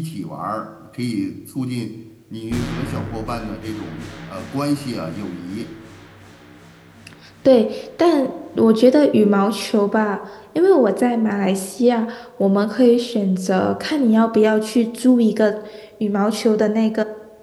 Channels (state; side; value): identical; both; correlation 1.00